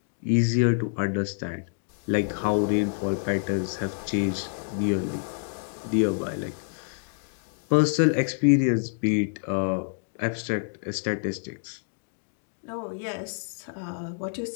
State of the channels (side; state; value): right; silent; digital silence